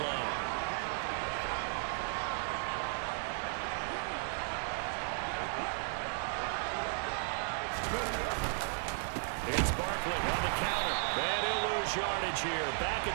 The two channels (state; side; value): silent; left; 54 dB below the other